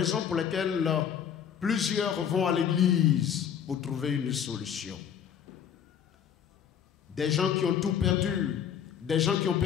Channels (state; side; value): quieter; right; 8.5 dB